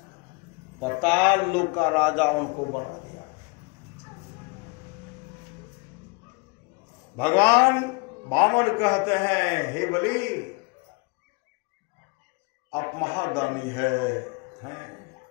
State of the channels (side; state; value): right; quieter; 29.5 dB